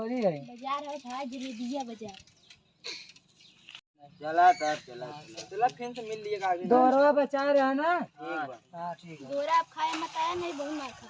है बाजार है था जलेबिया बाजार। चला तब चला फिर से मिल लिएगा आगे। दोरवा बचा रहे ना। हाँ ठीक है। दोरा आप खाए मत आया नहीं बहुत मार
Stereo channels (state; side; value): identical; both; correlation 1.00